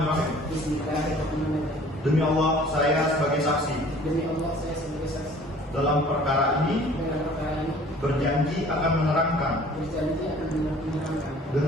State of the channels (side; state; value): both; normal; correlation 0.51